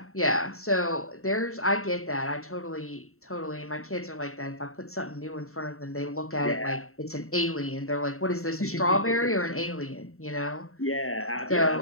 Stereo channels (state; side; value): late; right; 0.63 ms